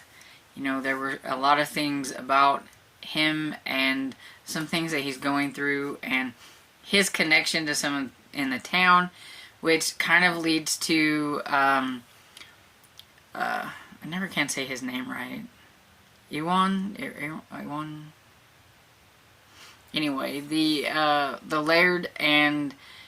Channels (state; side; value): identical; both; correlation 1.00